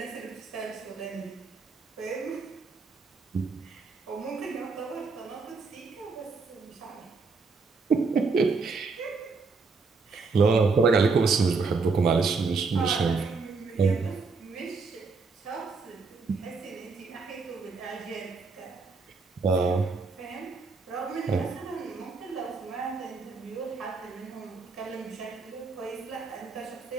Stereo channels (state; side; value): quieter; left; 4.4 dB